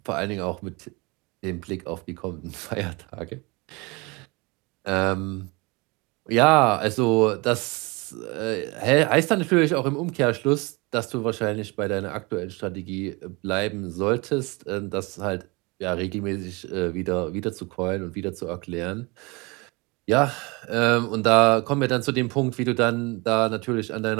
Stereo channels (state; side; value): quieter; left; 26.8 dB